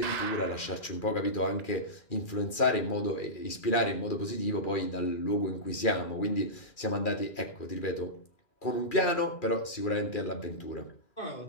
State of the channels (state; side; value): late; right; 2.4 ms